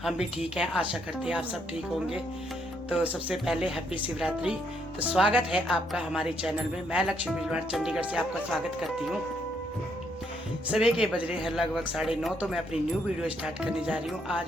हम भी ठीक हैं, आशा करते हैं आप सब ठीक होंगे। तो सबसे पहले हैप्पी शिवरात्रि। तो स्वागत है आपका हमारे चैनल में। मैं लक्ष्मी बिजवाड़ चंडीगढ़ से आपका स्वागत करती हूँ। सुबह के बज रहे हैं लगभग 9:30। तो मैं अपनी न्यू वीडियो स्टार्ट करने जा रही हूँ। आज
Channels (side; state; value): both; normal; correlation 0.73